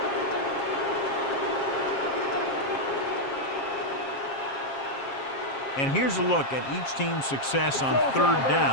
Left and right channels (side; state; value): right; late; 7.5 ms